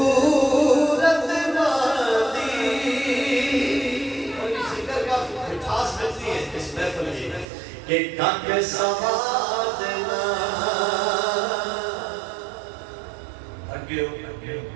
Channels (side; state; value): left; drops out; at 7.5 s